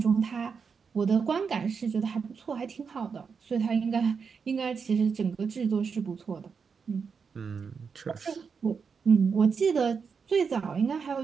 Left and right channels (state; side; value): quieter; left; 5.8 dB